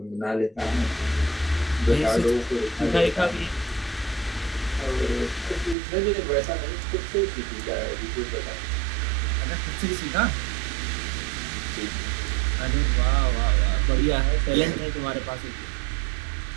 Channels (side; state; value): left; drops out; at 5.8 s